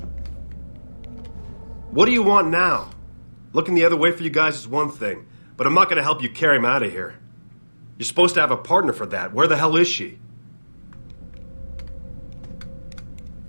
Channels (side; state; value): both; inverted; correlation -1.00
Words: What do you want now? Looking the other way for you guys is one thing, but I'm not gonna help you carry him out of here. You're supposed to have a partner for that. Where the hell is she?